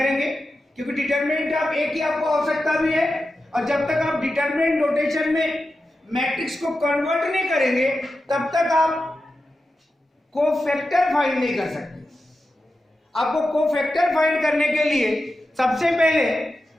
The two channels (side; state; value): both; normal; correlation 0.91